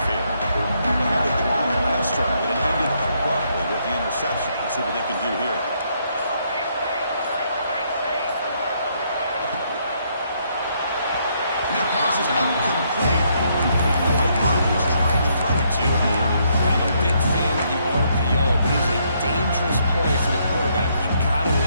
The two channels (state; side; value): inverted; both; correlation -0.72